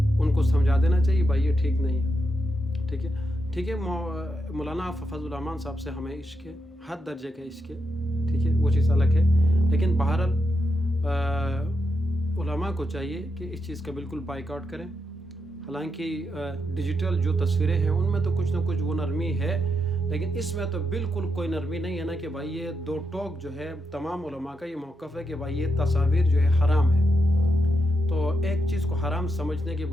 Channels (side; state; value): both; normal; correlation 0.84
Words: کو سمجھا دینا چاہیے بھائی یہ ٹھیک نہیں ہے، ٹھیک ہے۔ مولانا فضل الرحمان صاحب سے ہمیں عشق ہے، حد درجے کا عشق ہے، ٹھیک ہے، وہ چیز الگ ہے، لیکن بہرحال علماء کو چاہیے کہ اس چیز کا بالکل بائیکاٹ کریں۔ حالانکہ ڈیجیٹل جو تصویریں ہیں ان میں تو کچھ نہ کچھ وہ نرمی ہے، لیکن اس میں تو بالکل کوئی نرمی نہیں ہے نا کہ بھائی یہ دو ٹوک جو ہے تمام علماء کا یہ موقف ہے کہ بھائی یہ تصاویر جو ہے حرام ہے۔ تو ایک چیز کو حرام سمجھنے کے